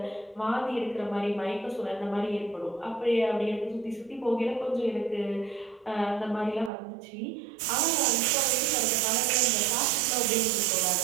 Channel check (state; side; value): drops out; left; at 6.7 s